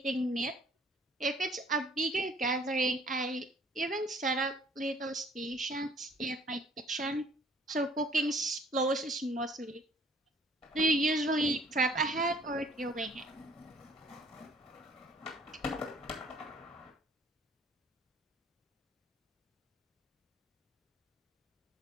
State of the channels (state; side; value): normal; both; correlation 0.58